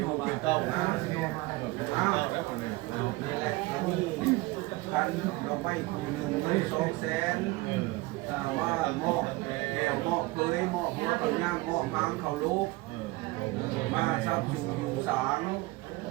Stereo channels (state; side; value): quieter; left; 21.6 dB